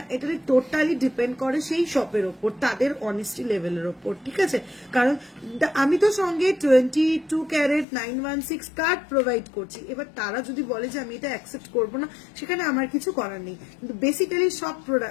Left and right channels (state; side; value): drops out; right; at 7.9 s